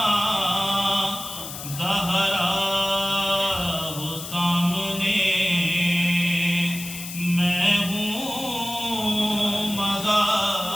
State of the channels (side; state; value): left; noise; hiss, 9 dB below the sound